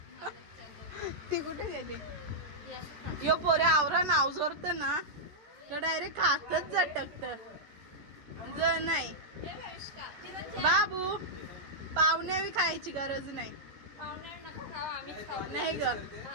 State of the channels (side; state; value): left; late; 14 ms